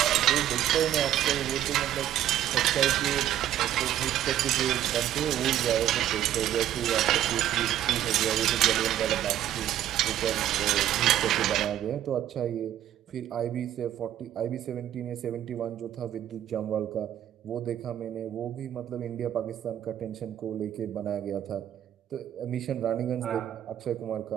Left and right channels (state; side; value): quieter; left; 11.7 dB